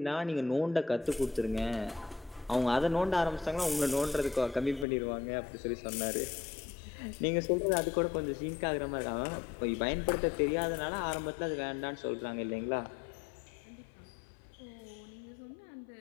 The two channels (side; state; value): right; drops out; at 4.9 s